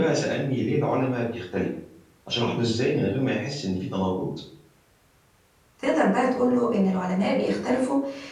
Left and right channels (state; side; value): identical; both; correlation 1.00